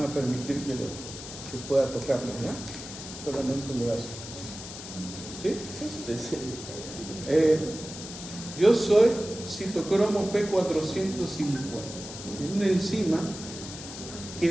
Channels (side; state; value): left; noise; hiss, 11 dB below the sound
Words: a permitir que pueda tocarlo, ¿ya? Solamente el brazo. ¿Sí? Sí. Yo soy citocromo P450, es una enzima que